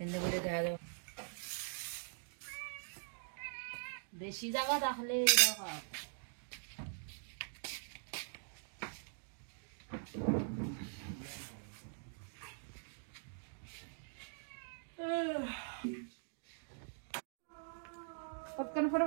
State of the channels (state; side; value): silent; left; digital silence